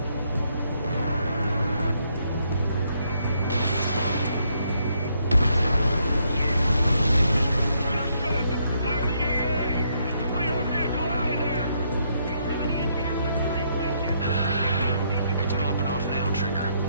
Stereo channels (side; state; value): both; inverted; correlation -0.73